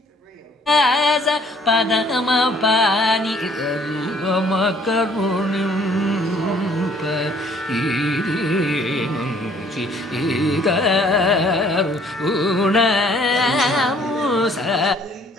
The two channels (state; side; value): normal; both; correlation 0.60